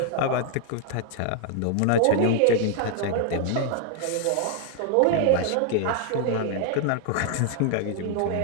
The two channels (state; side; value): different; both; correlation 0.00